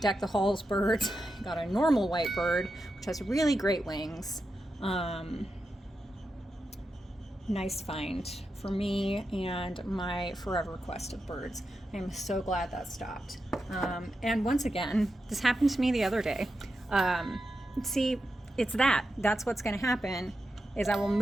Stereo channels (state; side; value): normal; both; correlation 0.89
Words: Deck the Halls birds, I got a normal white bird, which has really great wings. Nice find for me and my forever quest of birds. I'm so glad that stopped. And once again, this happened to me the other day. See, that's what's going to happen, is I will